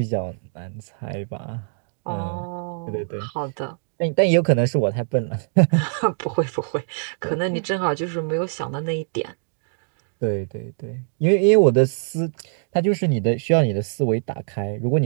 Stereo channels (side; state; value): left; silent; digital silence